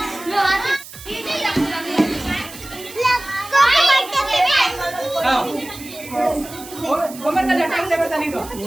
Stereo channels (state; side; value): noise; right; hiss, 16 dB below the sound